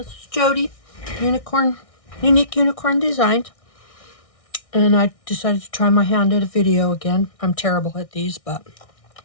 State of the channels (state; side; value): late; right; 1.6 ms